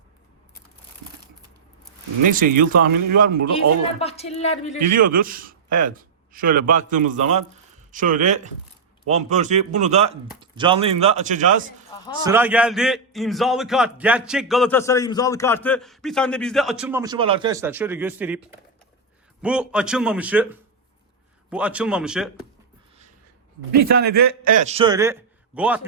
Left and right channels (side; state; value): left; quieter; 4.4 dB